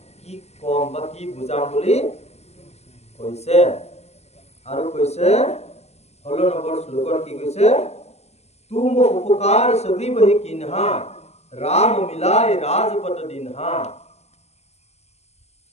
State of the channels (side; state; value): right; late; 0.31 ms